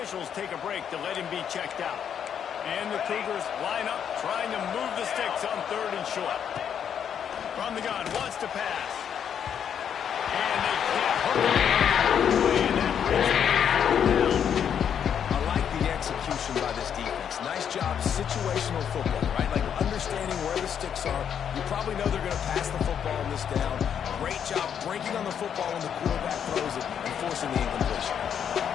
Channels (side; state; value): right; quieter; 8.4 dB